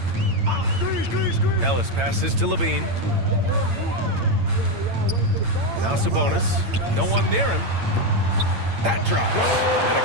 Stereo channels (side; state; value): left; late; 8.8 ms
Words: Ellis passes to Levine. Now Sabonis. No one near him. That drops. And it